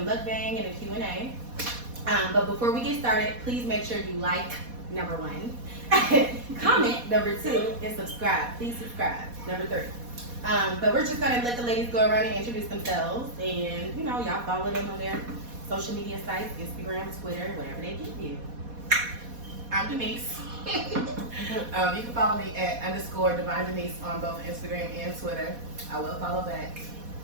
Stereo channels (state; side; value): late; left; 4.1 ms